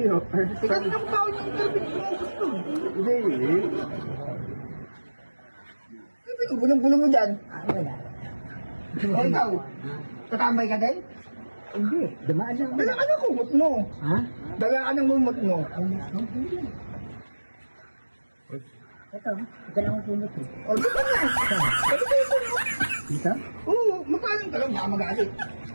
ho. Ikaw dito ko pa ako yung interview mo gusto. Hindi. Bulong-bulong mo dyan. Wala. O ikaw, tatambay ka din? Hindi, dumaan lang. Dala ka ng kumot mo. Ha? Dala ka ng kumot mo. Ito, ito lang ang kumot eh. O, di ba na? Dito? Oo, magpalang ka lang, baka magalit.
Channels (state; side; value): inverted; both; correlation -1.00